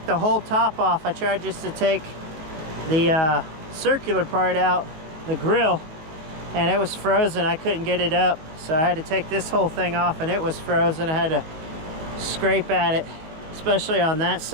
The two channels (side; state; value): left; late; 19 ms